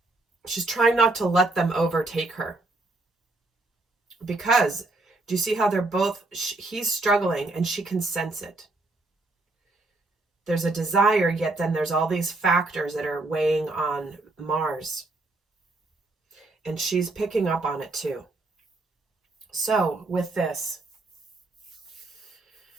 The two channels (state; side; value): quieter; left; 3.0 dB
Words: She's trying not to let them overtake her. Because, do you see how they're both, he's struggling and she can sense it. There's a desire, yet then there's all these factors that are weighing on Mars. And she's picking up on it too. So with this,